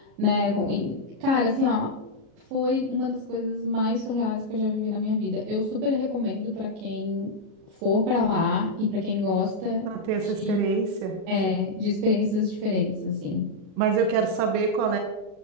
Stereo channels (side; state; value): left; late; 37 ms